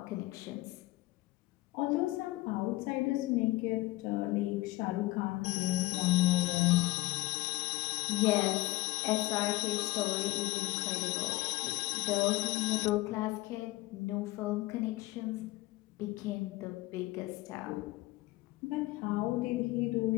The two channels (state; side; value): quieter; right; 19.4 dB